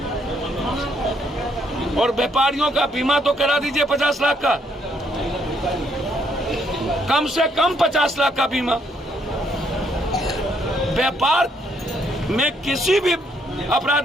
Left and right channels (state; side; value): normal; both; correlation 0.71